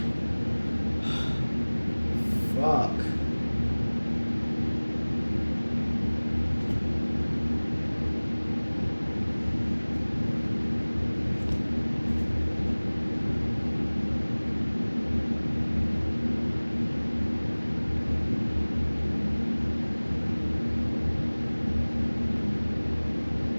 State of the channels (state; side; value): inverted; both; correlation -1.00